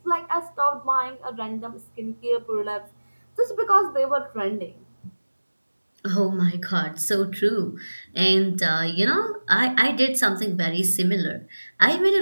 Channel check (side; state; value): both; inverted; correlation -1.00